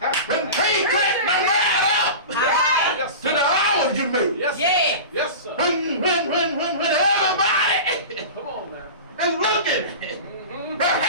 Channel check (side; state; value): both; inverted; correlation -0.31